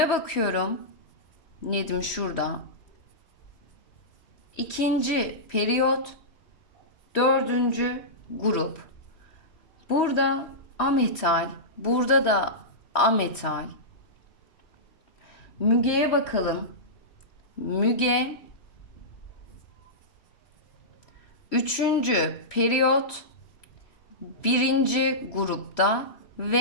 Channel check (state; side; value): late; right; 3.1 ms